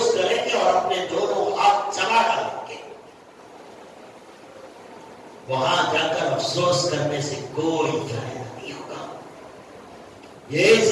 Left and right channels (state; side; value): identical; both; correlation 1.00